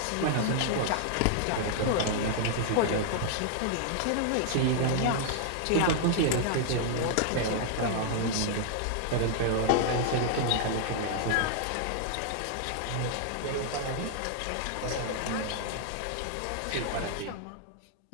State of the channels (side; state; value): both; different; correlation -0.01